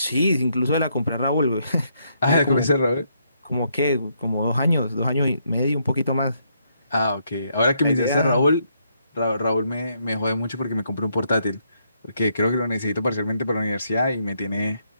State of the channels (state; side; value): inverted; both; correlation -0.75